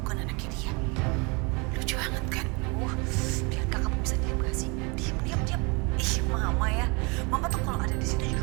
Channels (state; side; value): quieter; left; 29.8 dB